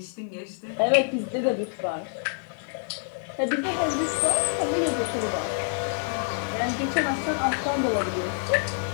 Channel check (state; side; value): silent; right; digital silence